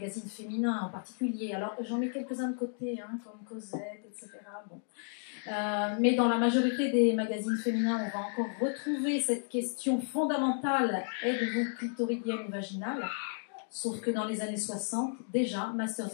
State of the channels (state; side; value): silent; right; 56 dB below the other